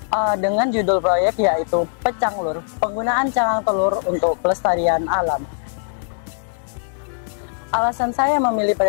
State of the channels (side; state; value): right; silent; digital silence